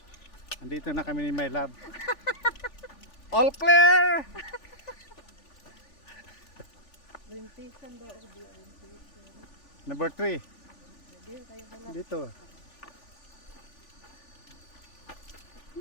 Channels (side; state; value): right; late; 3.4 ms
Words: Andito na kami ni My Love. All clear! Orientation daw. Number 3. Dito.